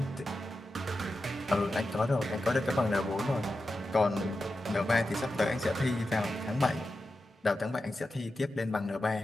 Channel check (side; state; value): both; normal; correlation 0.91